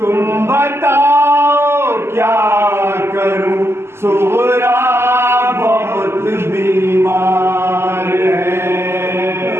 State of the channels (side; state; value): left; late; 0.12 ms